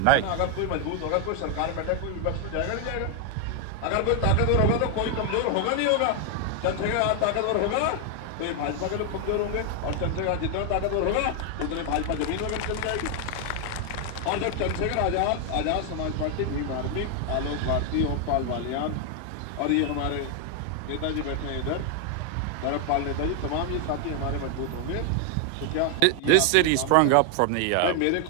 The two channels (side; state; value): both; different; correlation 0.00